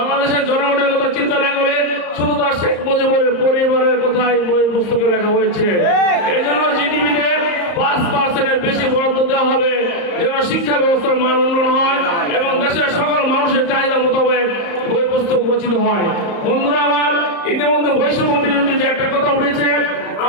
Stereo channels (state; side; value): late; right; 34 ms